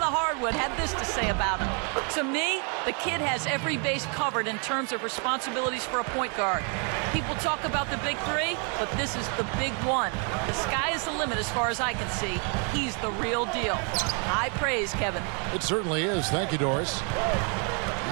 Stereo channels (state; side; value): quieter; left; 37.4 dB